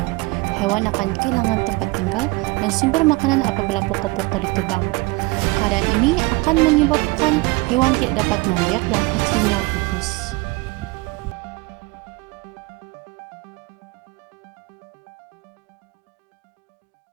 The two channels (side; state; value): left; quieter; 24.5 dB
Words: Hewan akan kehilangan tempat tinggal dan sumber makanan apabila pokok-pokok ditebang. Keadaan ini akan menyebabkan hewan tidak dapat membiak dan akhirnya pupus.